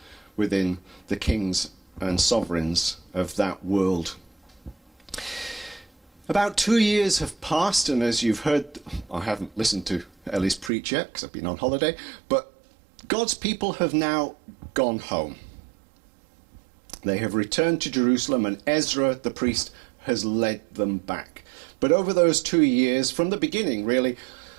within the kings and sovereigns of that world. About 2 years have passed, and as you've heard, I haven't listened to Ellie's preach yet because I've been on holiday, but God's people have now gone home. They have returned to Jerusalem, and Ezra the priest has led them back. But over those 2 years, from the beginning really,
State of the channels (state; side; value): drops out; left; at 10.7 s